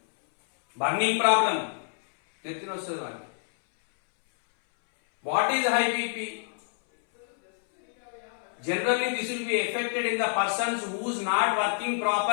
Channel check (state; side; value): silent; right; 60 dB below the other